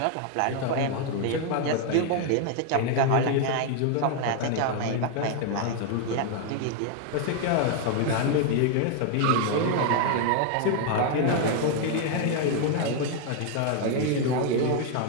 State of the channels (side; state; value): both; different; correlation 0.00